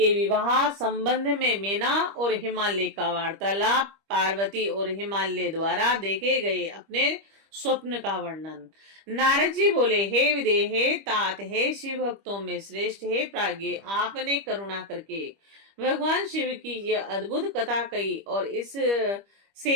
विवाह संबंध में मीना और हिमालय का वार्तालाप। पार्वती और हिमालय द्वारा देखे गए अपने स्वप्न का वर्णन। नारद जी बोले, हे विदेह, हे तात, हे शिव भक्तों में श्रेष्ठ, हे प्राज्ञ, आपने करुणा करके भगवान शिव की यह अद्भुत कथा कही और इस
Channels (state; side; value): late; left; 25 ms